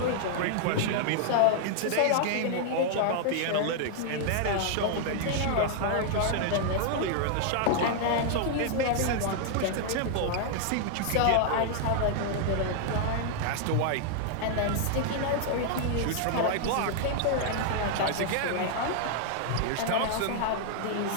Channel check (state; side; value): different; both; correlation 0.00